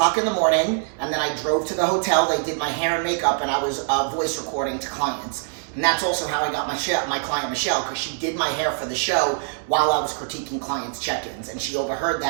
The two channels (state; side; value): silent; left; digital silence